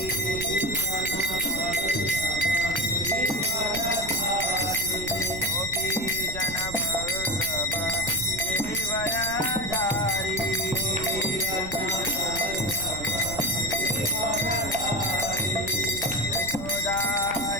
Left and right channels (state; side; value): noise; right; rumble, 11 dB below the sound